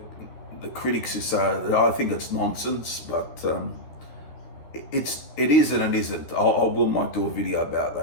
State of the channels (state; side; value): late; right; 13 ms